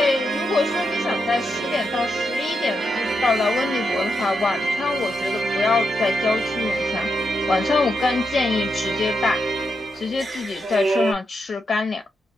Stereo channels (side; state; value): both; normal; correlation 0.84